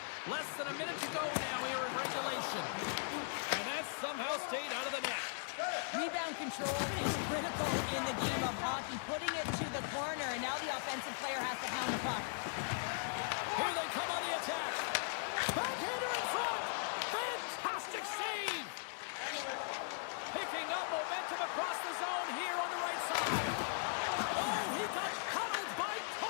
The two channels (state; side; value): silent; right; digital silence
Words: control is critical in the game of hockey. Putting it to the corner, and now the offensive player has to hound the puck. Here they come on the attack. Backhander in front. Fantastic save. Picking up momentum across the zone here on the right side. Oh, he got cuddled by